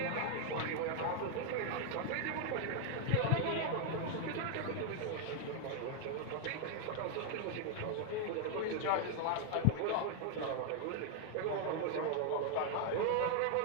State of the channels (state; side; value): different; both; correlation 0.00